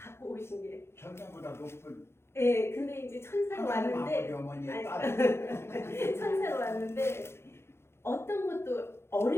오신 게. 천사보다 높은 예, 근데 이제 천사로 왔는데, 아버지 어머니의 아니, 딸. 천사로 왔는데 어떤 것도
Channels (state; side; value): late; right; 0.12 ms